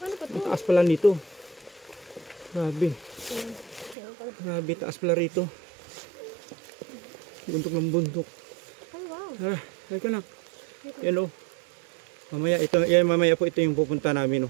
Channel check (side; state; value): left; drops out; at 4.0 s